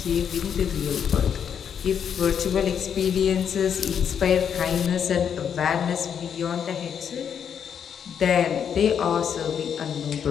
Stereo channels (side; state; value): right; quieter; 7.9 dB